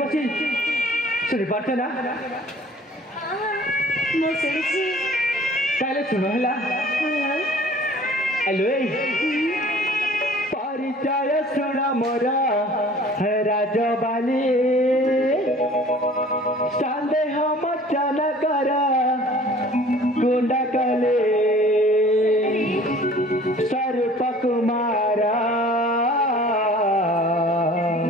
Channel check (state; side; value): normal; both; correlation 0.50